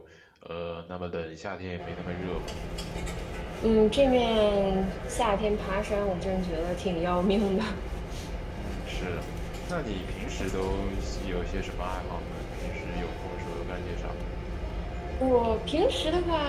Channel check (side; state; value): both; identical; correlation 1.00